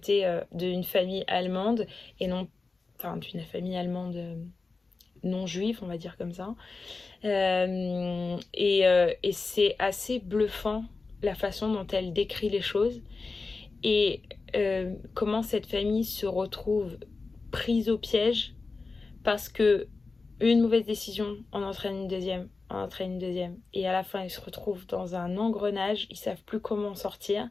d'une famille allemande et non, d'une famille allemande non juive, on va dire comme ça. Et c'est assez bluffant la façon dont elle décrit les choses et comment cette famille se retrouve prise au piège parce que une mauvaise décision en entraîne une deuxième, et à la fin ils se retrouvent dans un engrenage, ils savent plus comment sortir,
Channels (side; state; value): right; quieter; 4.0 dB